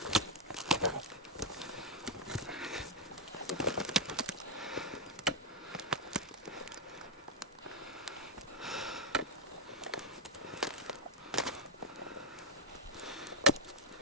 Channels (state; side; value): normal; both; correlation 0.01